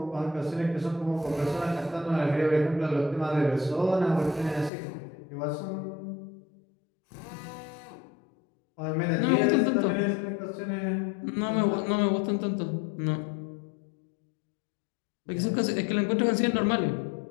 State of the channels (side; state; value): right; drops out; at 4.7 s